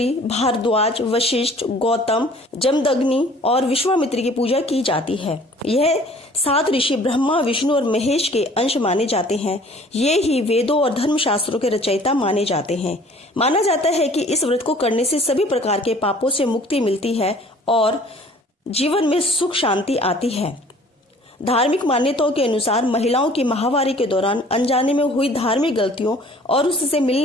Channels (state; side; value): normal; both; correlation 0.52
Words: भारद्वाज, वशिष्ठ, गौतम, जमदग्नि और विश्वामित्र की पूजा की जाती है। यह 7 ऋषि ब्रह्मा, विष्णु और महेश के अंश माने जाते हैं। ये ही वेदों और धर्मशास्त्रों के रचयिता माने जाते हैं। माना जाता है कि इस व्रत को करने से सभी प्रकार के पापों से मुक्ति मिलती है और जीवन में सुख शांति आती है। धार्मिक मान्यताओं के अनुसार महिलाओं की माहवारी के दौरान अनजाने में हुई धार्मिक गलतियों और उससे